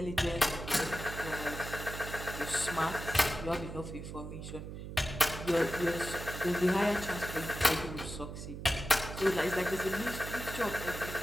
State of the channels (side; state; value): right; noise; hum, 9 dB below the sound